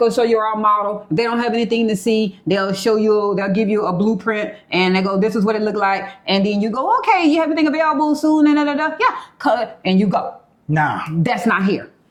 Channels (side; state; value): both; identical; correlation 1.00